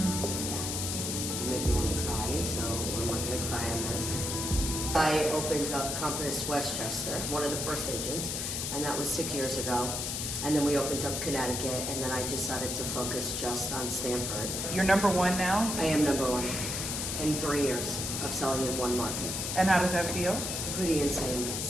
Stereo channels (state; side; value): noise; left; hiss, 2 dB below the sound